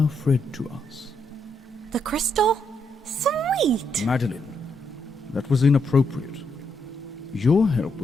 Fred to us. The crystal? Sweet! Madeline, that was inappropriate. Your help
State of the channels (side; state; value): both; normal; correlation 0.78